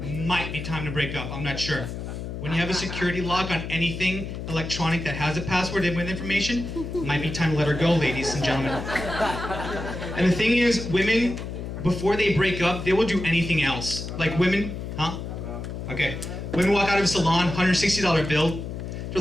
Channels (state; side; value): noise; left; hum, 7 dB below the sound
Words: be time to break up. I'm not sure. When you have a security lock on anything electronic that has a password and with information, might be time to let her go, ladies and gentlemen. And the thing is, women, before they break up, they will do anything else. Like women, huh? Okay. Women walk out of a salon, $160 bill. They're